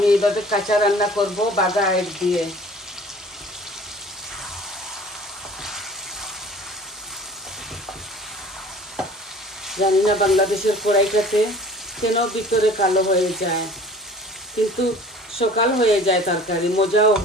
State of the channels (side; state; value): both; normal; correlation 0.47